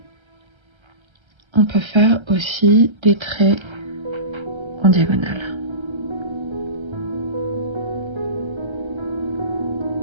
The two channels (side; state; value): left; late; 1.3 ms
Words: on peut faire aussi des traits en diagonale.